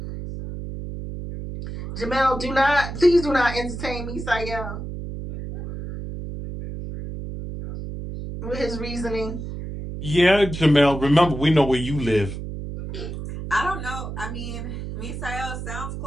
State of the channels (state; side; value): noise; right; hum, 8 dB below the sound